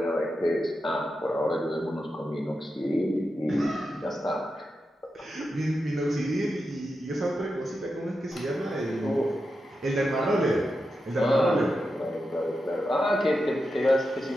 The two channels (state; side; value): normal; both; correlation 0.89